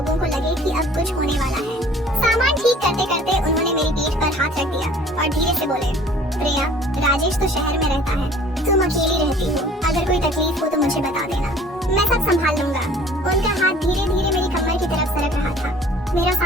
को लगे कि अब कुछ होने वाला है। सामान ठीक करते करते उन्होंने मेरी पीठ पर हाथ रख दिया और धीरे से बोले, प्रिया, राजेश तो शहर में रहता है, तुम अकेली रहती हो, अगर कोई तकलीफ हो तो मुझे बता देना, मैं सब संभाल लूंगा। उनका हाथ धीरे धीरे मेरी कमर की तरफ सरक रहा था। मेरा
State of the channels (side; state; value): both; normal; correlation 0.51